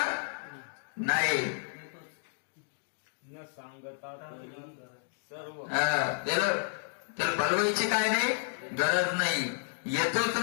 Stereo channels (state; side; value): silent; right; digital silence